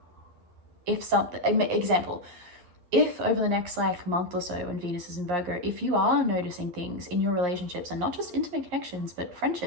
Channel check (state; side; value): late; left; 11 ms